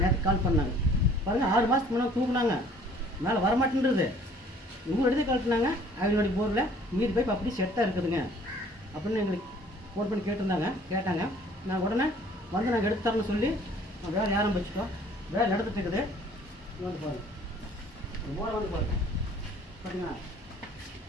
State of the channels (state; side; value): normal; both; correlation 0.55